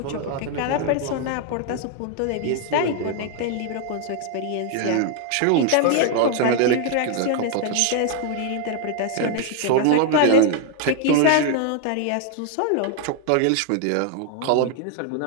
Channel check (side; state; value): both; different; correlation 0.00